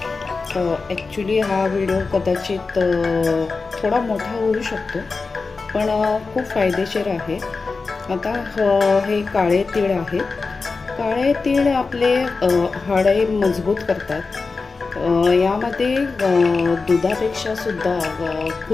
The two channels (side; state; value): right; quieter; 4.3 dB